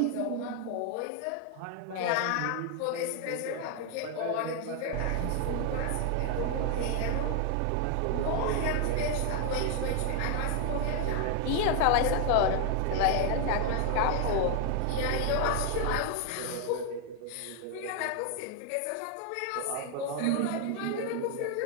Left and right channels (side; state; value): both; different; correlation 0.00